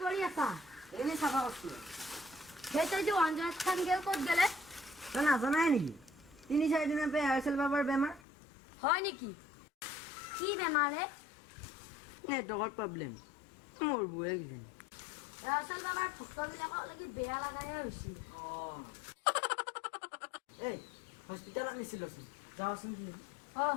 কৰি আছা? এনেই চাফা কৰিছোঁ। সেই তই যে অঞ্জনা খান গেল ক'ত গেলে? তই নাজানাই নেকি? 3-4 দিনৰ পৰা এয়াৰচেল বাবাৰ বেমাৰ। হয় নেকি? কি বেমাৰ হে? নেটৱৰ্কৰ প্ৰব্লেম। মোৰ বুঢ়ে কিজানি। এয়াৰচেল বাবাৰ ভক্তবিলাকক লাগি বেয়া লাগাহে হৈছিল। এই হস্পিটেলত নিছিলোচোন, যাওঁচোন কি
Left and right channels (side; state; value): right; drops out; at 8.2 s